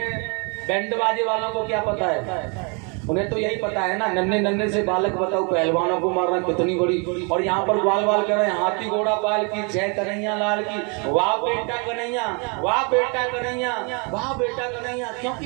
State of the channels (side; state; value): left; quieter; 34.4 dB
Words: बैंड बाजे वालों को क्या पता है, उन्हें तो यही पता है ना, नन्हे नन्हे से बालक बताओ पहलवानों को मारना कितनी बड़ी। और यहाँ पर बाल बाल कर रहे हैं, हाथी घोड़ा पाल की जय कन्हैया लाल की, वाह बेटा कन्हैया, वाह बेटा कन्हैया, वाह बेटा कन्हैया।